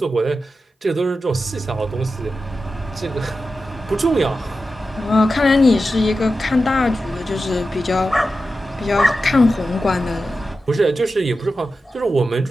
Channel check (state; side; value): normal; both; correlation 0.92